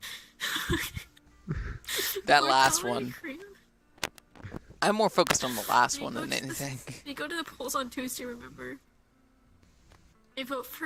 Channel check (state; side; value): identical; both; correlation 1.00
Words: That last Immortality one. cream. I'm more focused on the last When one you than go to the- anything. When you go to the polls on Tuesday, remember, a vote